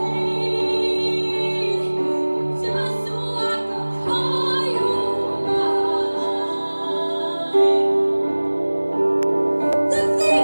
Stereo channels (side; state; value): both; inverted; correlation -1.00